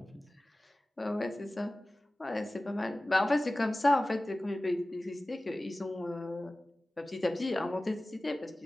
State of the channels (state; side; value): normal; both; correlation 0.97